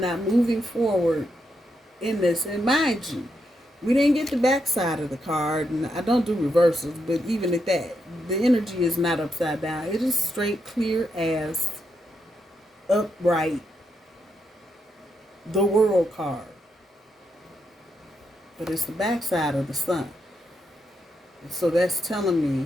moving forward in this. And mind you, we didn't get the backside of the card, and I don't do reversals, but even at that, the energy is not upside down. It is straight, clear as, upright, the World card. But it's the backside of the Sun. So that's telling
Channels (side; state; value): both; normal; correlation 0.81